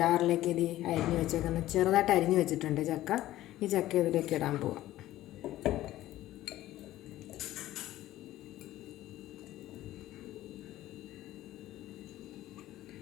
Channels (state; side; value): quieter; right; 14.9 dB